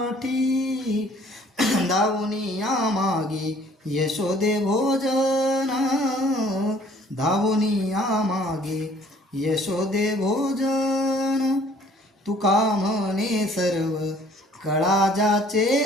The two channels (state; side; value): normal; both; correlation 0.57